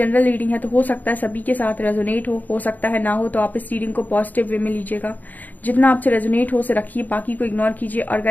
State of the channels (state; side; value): late; right; 0.083 ms